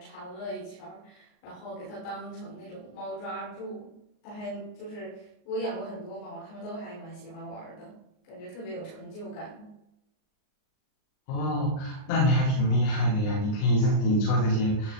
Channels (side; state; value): right; late; 38 ms